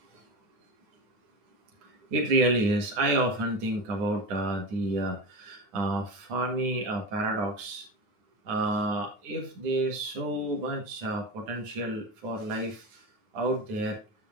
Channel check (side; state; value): left; late; 9.5 ms